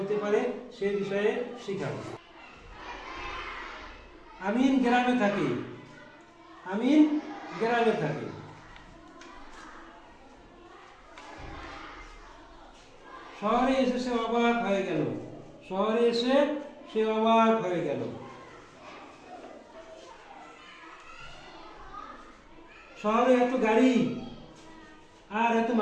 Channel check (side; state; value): both; identical; correlation 1.00